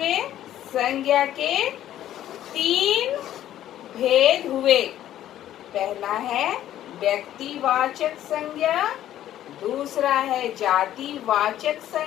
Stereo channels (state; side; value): quieter; right; 12.2 dB